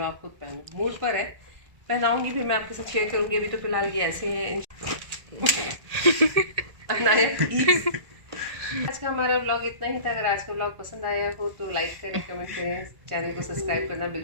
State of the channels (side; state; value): left; late; 1.8 ms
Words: आप खुद पहनो मूड पर है पहनाऊंगी फिर मैं आपके साथ शेयर करूँगी अभी तो फिलहाल ये ऐसे हैं आज का हमारा व्लॉग इतना ही था अगर आज का व्लॉग पसंद आया हो तो लाइक करें कमेंट करें चैनल को सब्सक्राइब करना